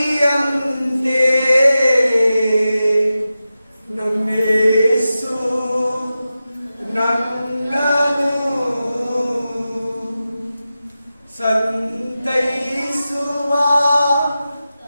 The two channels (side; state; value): both; inverted; correlation -0.93